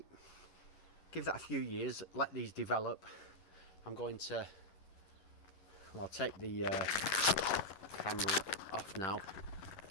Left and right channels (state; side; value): late; right; 11 ms